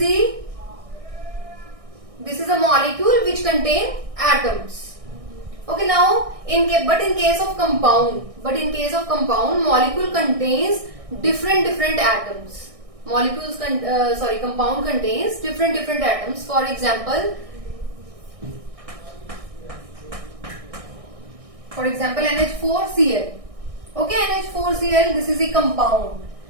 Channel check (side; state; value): left; late; 1.6 ms